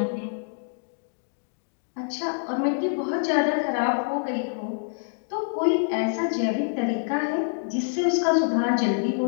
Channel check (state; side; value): silent; right; digital silence